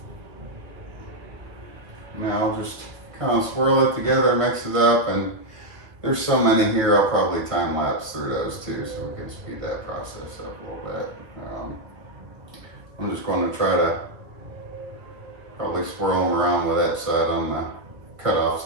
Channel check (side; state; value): left; late; 1.2 ms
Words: Now I'll just kind of swirl it together, mix it up, and there's so many here, I'll probably time lapse through those too, so we can speed that process up a little bit. I'm just going to try to probably swirl them around with that side on the cut off